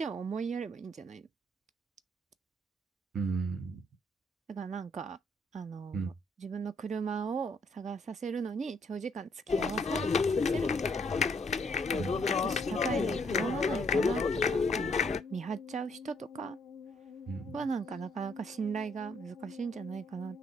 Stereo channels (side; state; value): both; normal; correlation 0.69